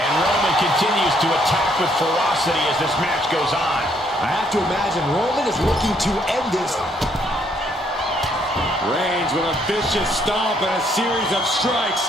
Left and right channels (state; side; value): normal; both; correlation 0.69